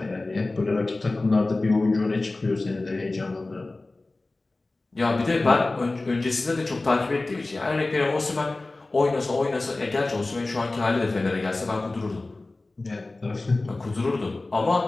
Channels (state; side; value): quieter; right; 3.1 dB